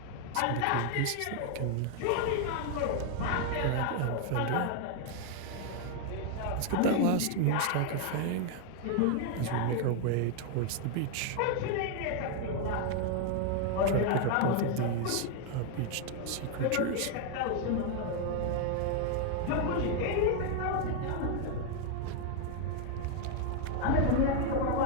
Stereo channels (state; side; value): different; both; correlation 0.00